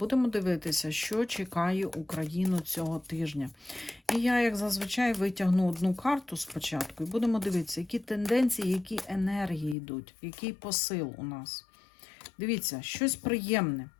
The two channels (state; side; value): drops out; right; at 9.8 s